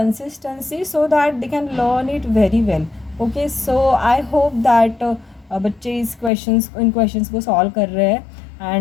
so that they can learn it very well. Okay, so I hope that बच्चे इन क्वेश्चंस को सॉल्व कर रहे हैं.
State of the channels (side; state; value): right; drops out; at 6.3 s